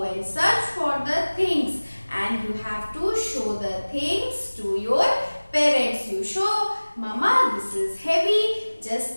and search for the things and you have to show the things to your parents. You show, Mama, this is heavy, just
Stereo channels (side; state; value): both; inverted; correlation -1.00